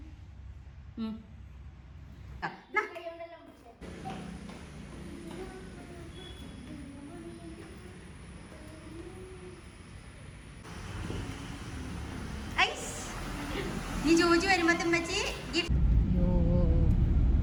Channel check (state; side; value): identical; both; correlation 1.00